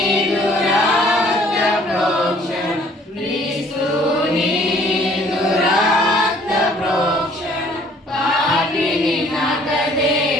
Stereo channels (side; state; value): both; normal; correlation 0.58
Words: రక్త ప్రోక్షణ క్రీస్తు నీదు రక్త ప్రోక్షణ పాపిని నాకదే